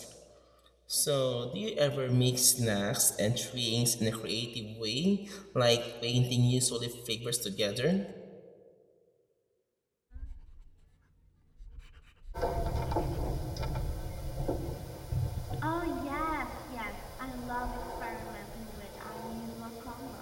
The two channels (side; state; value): both; identical; correlation 1.00